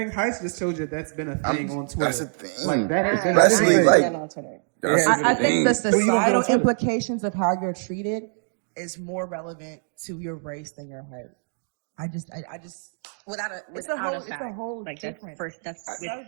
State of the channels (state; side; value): silent; left; 62 dB below the other